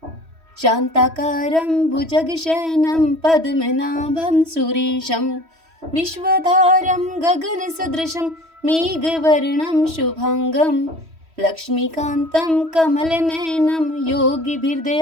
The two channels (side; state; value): left; late; 3.1 ms